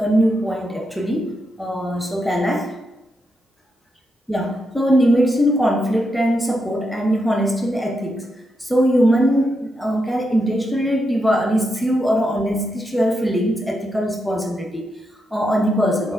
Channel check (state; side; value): normal; both; correlation 0.84